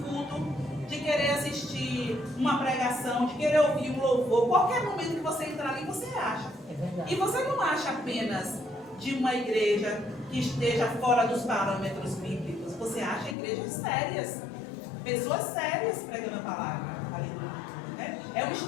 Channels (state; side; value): drops out; right; at 13.4 s